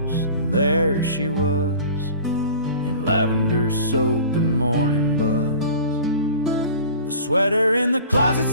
and there she was, in lavender soap and morning buzz. The sweater in the closet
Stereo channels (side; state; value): both; inverted; correlation -0.42